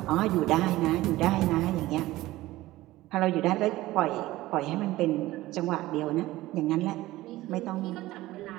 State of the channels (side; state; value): left; quieter; 17.3 dB